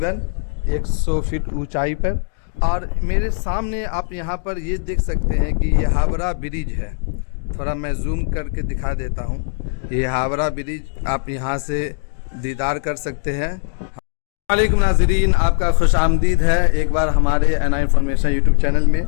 100 फीट ऊंचाई पर। और मेरे सामने आप यहाँ पर ये देख सकते हैं कि ये हावड़ा ब्रिज है। थोड़ा मैं जूम करके दिखा देता हूँ। ये हावड़ा ब्रिज आप यहाँ से दीदार कर सकते हैं। वालेकुम नाज़रीन, आपका खुश आमदीद है एक बार हमारे एनआई इन्फॉर्मेशन यूट्यूब चैनल में।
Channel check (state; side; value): silent; right; digital silence